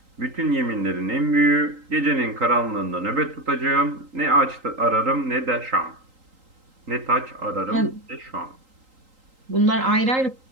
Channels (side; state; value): left; late; 3.8 ms